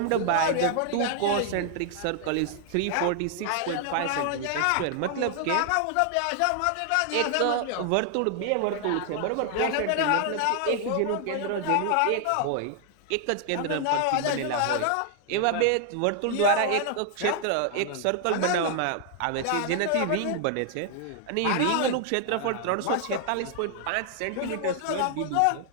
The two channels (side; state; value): both; different; correlation 0.00